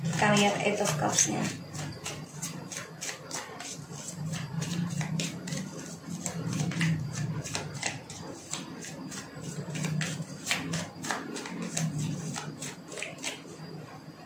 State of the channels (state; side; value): identical; both; correlation 1.00